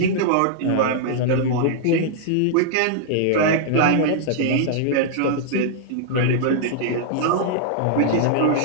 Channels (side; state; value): both; different; correlation -0.01